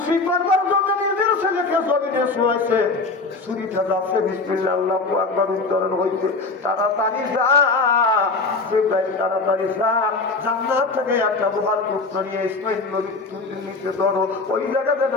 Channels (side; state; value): right; quieter; 3.8 dB